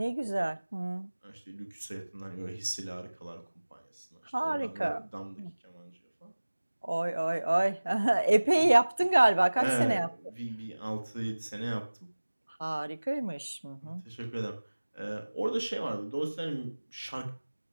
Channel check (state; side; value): inverted; both; correlation -1.00